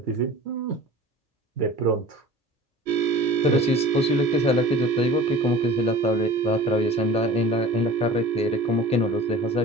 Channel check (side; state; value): both; normal; correlation 0.42